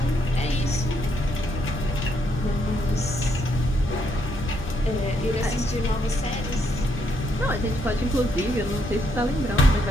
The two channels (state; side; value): normal; both; correlation 0.74